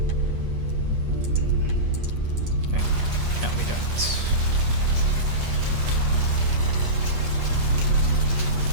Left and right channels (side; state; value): left; late; 8.3 ms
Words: Wait, no, we don't.